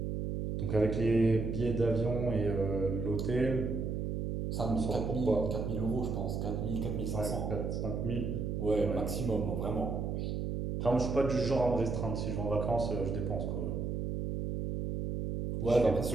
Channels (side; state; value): right; noise; hum, 2 dB below the sound